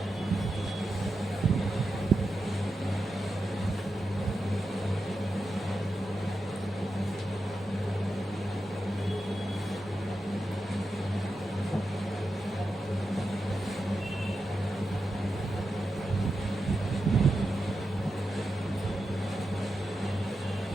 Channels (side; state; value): both; normal; correlation 0.89